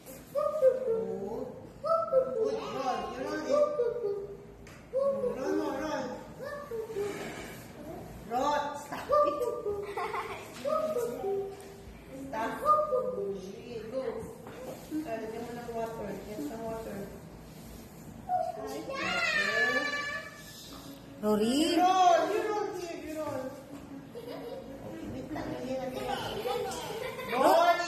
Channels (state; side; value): identical; both; correlation 1.00